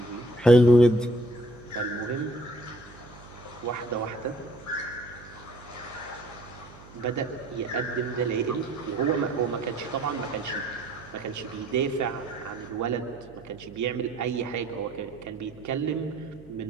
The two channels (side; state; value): right; noise; hum, 20 dB below the sound